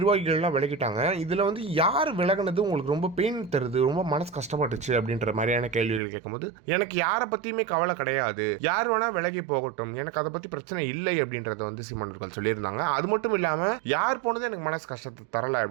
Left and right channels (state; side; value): drops out; left; at 6.0 s